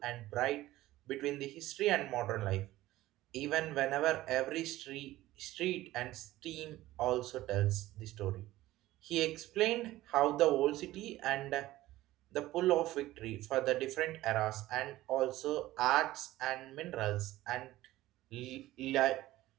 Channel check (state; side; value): quieter; left; 16.2 dB